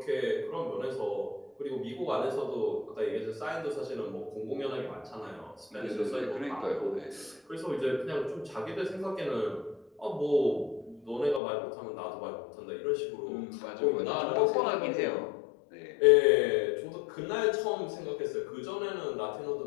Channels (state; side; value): drops out; right; at 11.4 s